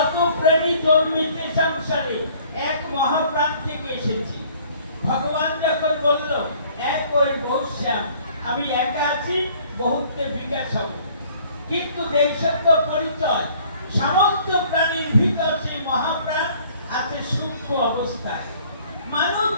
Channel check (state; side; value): inverted; both; correlation -0.56